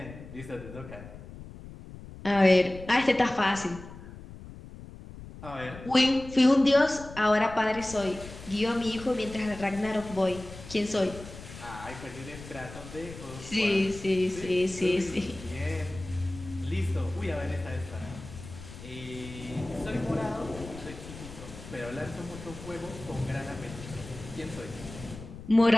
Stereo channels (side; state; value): left; noise; rumble, 14 dB below the sound